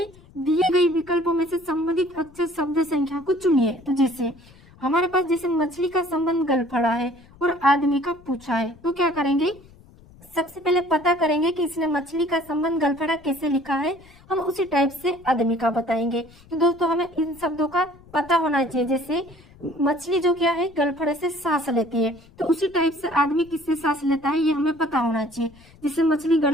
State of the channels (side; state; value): left; noise; rumble, 25 dB below the sound